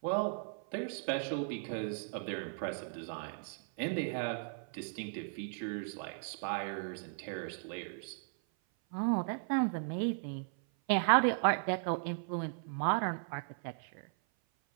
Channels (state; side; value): silent; left; 53 dB below the other